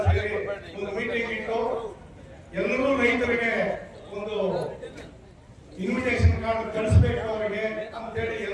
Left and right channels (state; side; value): identical; both; correlation 1.00